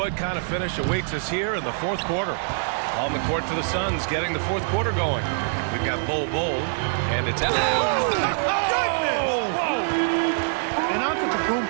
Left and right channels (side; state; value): left; silent; digital silence